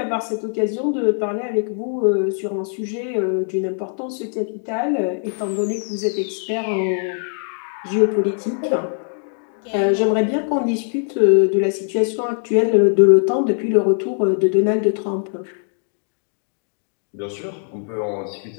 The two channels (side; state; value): right; silent; 65 dB below the other